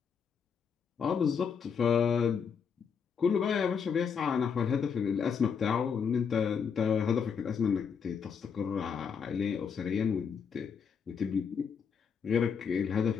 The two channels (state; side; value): quieter; right; 6.6 dB